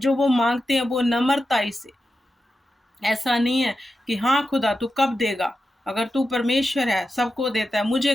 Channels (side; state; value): both; normal; correlation 0.90